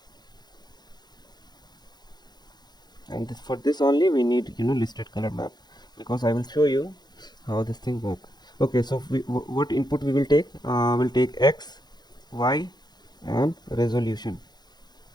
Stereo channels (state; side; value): late; right; 0.20 ms